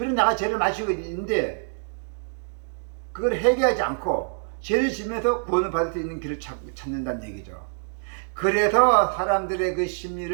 내가 죄를 마시고 있는데 그걸 회개하지 않고 죄를 지면서 구원을 받을 수 있는 길을 찾는다는 얘기죠. 그래서 사람들의 그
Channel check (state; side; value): silent; left; digital silence